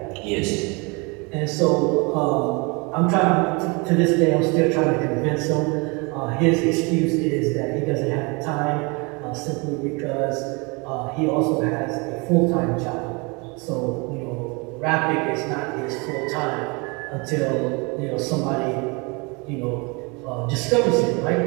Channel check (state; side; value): quieter; left; 29.3 dB